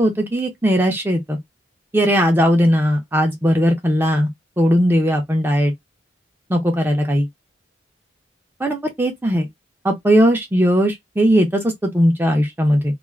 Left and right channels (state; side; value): normal; both; correlation 0.85